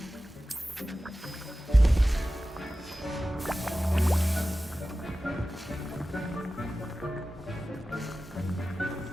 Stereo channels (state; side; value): normal; both; correlation 0.95